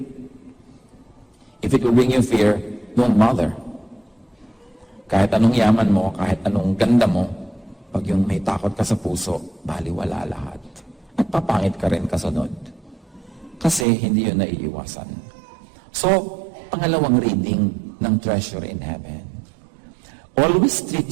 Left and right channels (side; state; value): left; drops out; at 13.9 s